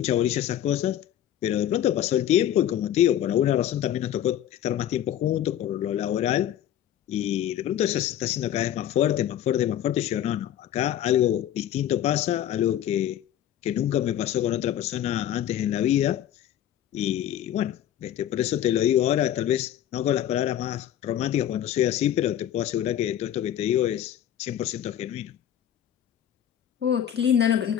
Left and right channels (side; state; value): right; quieter; 11.1 dB